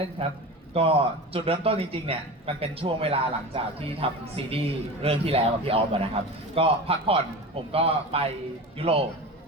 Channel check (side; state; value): both; normal; correlation 0.30